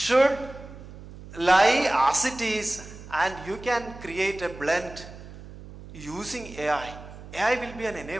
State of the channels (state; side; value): noise; right; hum, 16 dB below the sound